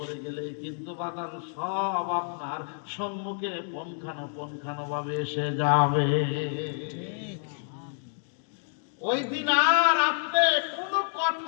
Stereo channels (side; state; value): right; silent; digital silence